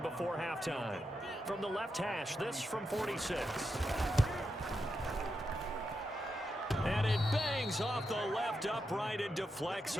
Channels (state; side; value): normal; both; correlation 0.86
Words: halftime. From the left hash, this from 46. And it bangs off the left upright and deflects